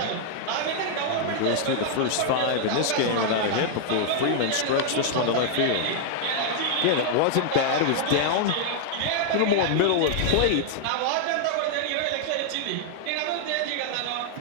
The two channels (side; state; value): both; different; correlation 0.00